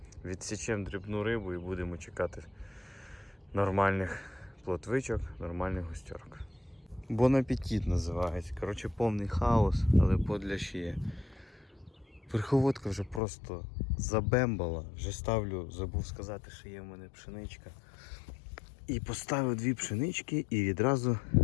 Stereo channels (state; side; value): drops out; right; at 13.2 s